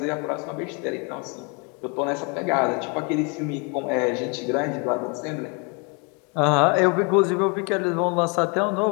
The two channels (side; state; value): right; quieter; 33.1 dB